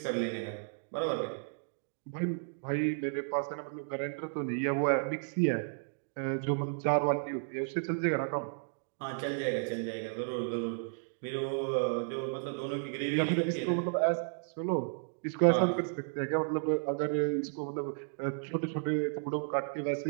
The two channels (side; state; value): left; silent; digital silence